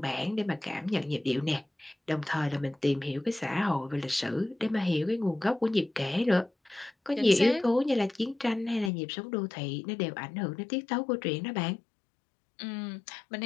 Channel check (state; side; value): drops out; right; at 8.9 s